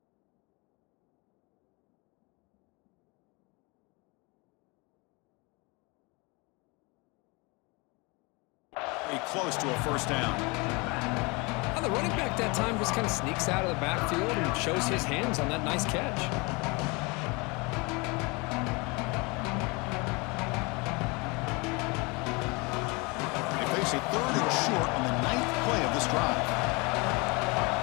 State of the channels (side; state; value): right; quieter; 27.6 dB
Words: Close to a 1st down. Well, the running back that time just kind of sneaks out of the backfield and shows his hands on that nice catch. They face a 3rd and short on the 9th play of this drive.